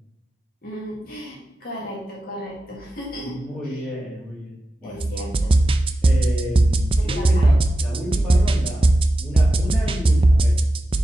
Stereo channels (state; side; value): normal; both; correlation 0.93